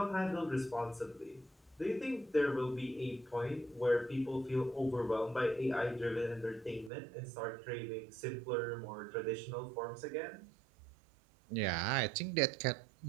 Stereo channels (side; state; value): left; drops out; at 6.9 s